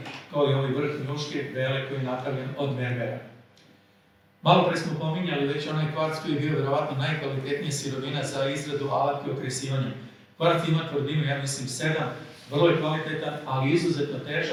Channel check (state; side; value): identical; both; correlation 1.00